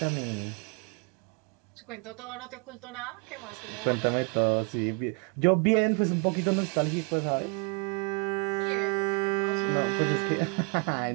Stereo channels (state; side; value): quieter; left; 34.4 dB